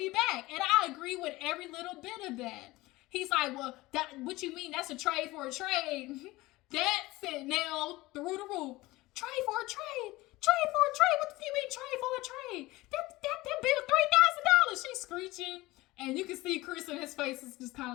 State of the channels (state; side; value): quieter; right; 19.7 dB